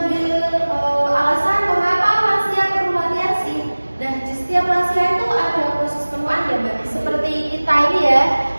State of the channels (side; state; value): both; inverted; correlation -1.00